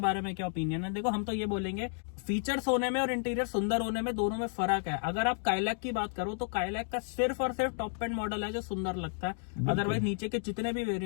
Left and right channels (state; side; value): silent; right; 56 dB below the other